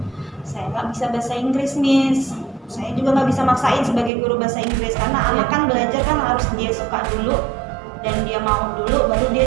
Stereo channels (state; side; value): drops out; left; at 4.1 s